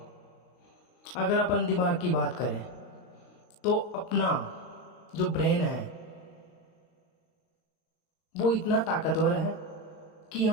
अगर अपन दिमाग की बात करें तो अपना जो ब्रेन है वो इतना ताकतवर है कि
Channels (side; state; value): right; late; 39 ms